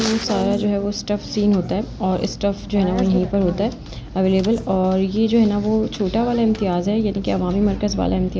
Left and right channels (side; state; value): both; identical; correlation 1.00